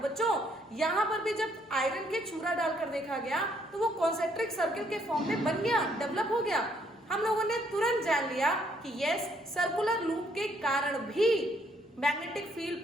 यहां पर भी जब आयरन के चूरा डालकर देखा गया तो वो कॉन्सेंट्रिक सर्किल के फॉर्म में बन गया, डेवलप हो गया। हम लोगों ने तुरंत जान लिया कि यस, सर्कुलर लूप के कारण भी मैग्नेटिक फील्ड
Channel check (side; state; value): both; normal; correlation 0.69